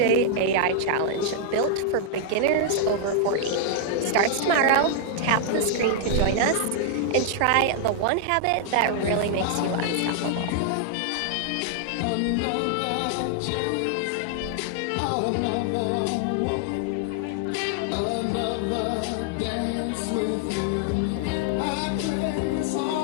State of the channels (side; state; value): both; different; correlation -0.01